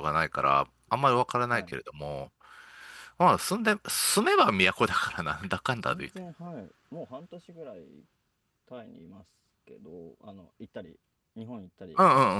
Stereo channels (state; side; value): identical; both; correlation 1.00